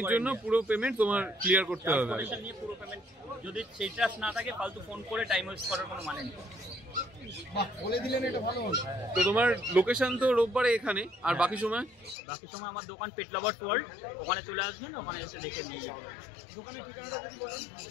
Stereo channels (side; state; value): right; drops out; at 12.2 s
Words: জন্য পুরো পেমেন্ট তোমার ক্লিয়ার করতে হবে। নিয়ে পুরো পেমেন্ট, যদি সেই ট্রাস্ট না থাকে ফালতু ফোন করে টাইম ওয়েস্ট করার কোনো মানে নেই। তো তোমার লোকেশন তো রোববারে এখানে, আর বাকি সময় আমার দোকান পেট লাভার্স ওয়ার্ল্ড, ওখানে চলে আসবেন, ওখানে এসে দেখে নিয়ে যাবেন।